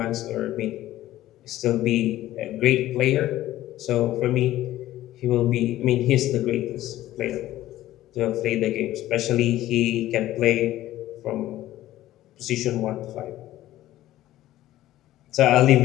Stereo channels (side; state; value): right; quieter; 14.6 dB